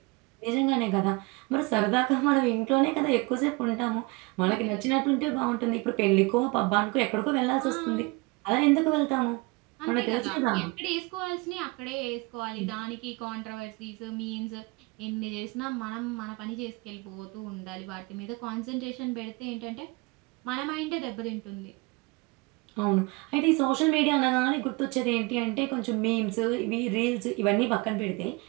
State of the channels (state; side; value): quieter; left; 26.1 dB